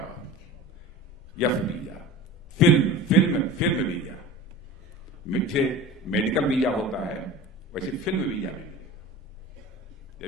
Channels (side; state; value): both; normal; correlation 0.35